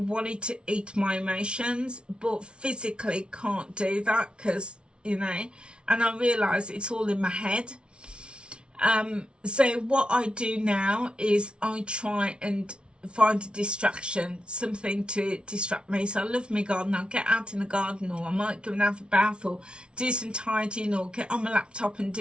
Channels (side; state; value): left; late; 0.057 ms